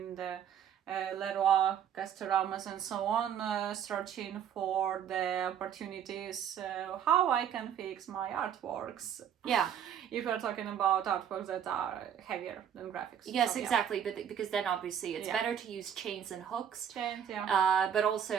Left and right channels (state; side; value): quieter; left; 9.0 dB